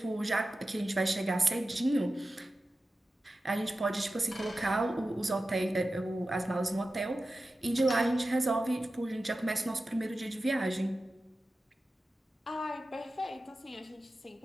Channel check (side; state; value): both; normal; correlation 0.94